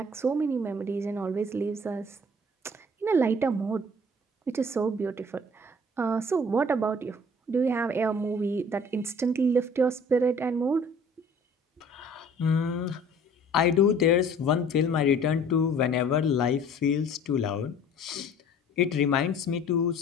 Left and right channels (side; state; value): both; normal; correlation 0.51